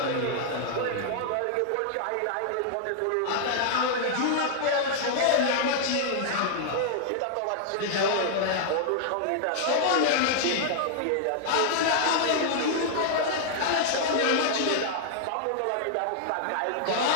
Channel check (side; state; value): both; different; correlation -0.01